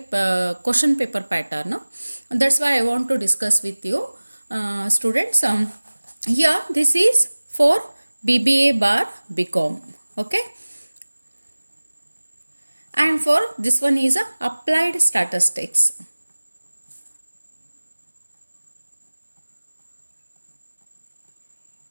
question paper pattern. That's why I want to discuss with you students. Here this is for BBA bar BCOM. Okay, and for this one is applied statistics.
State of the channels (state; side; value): inverted; both; correlation -1.00